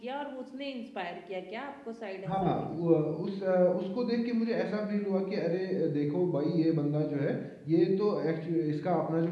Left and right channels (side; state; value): both; identical; correlation 1.00